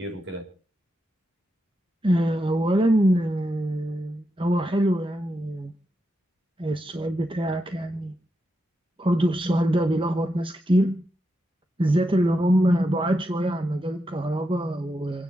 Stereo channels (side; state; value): both; normal; correlation 0.86